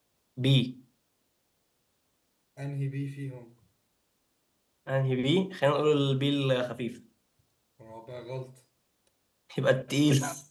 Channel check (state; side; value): identical; both; correlation 1.00